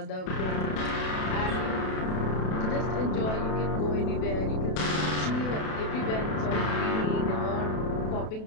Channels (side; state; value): right; late; 32 ms